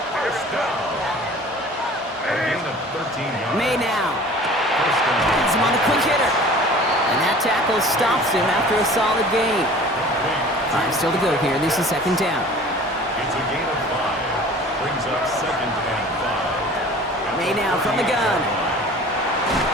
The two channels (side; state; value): both; normal; correlation 0.45